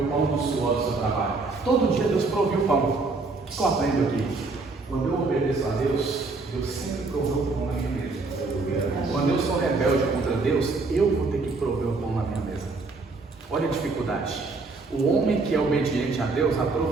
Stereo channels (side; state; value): left; quieter; 3.7 dB